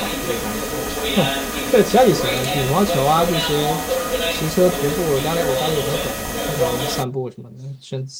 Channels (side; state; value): both; identical; correlation 1.00